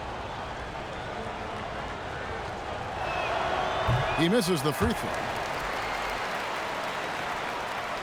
He misses the free throw.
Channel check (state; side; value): identical; both; correlation 1.00